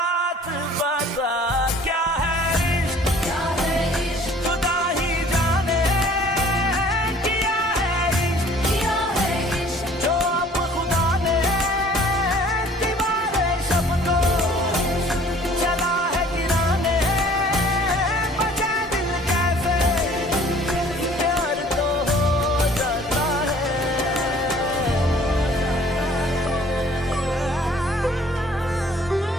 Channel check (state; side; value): normal; both; correlation 0.53